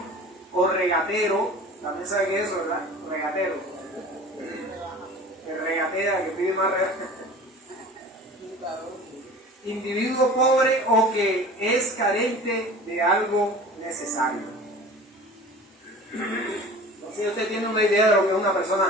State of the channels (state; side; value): normal; both; correlation 0.41